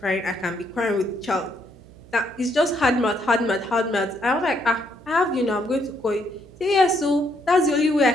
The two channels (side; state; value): right; noise; hum, 22 dB below the sound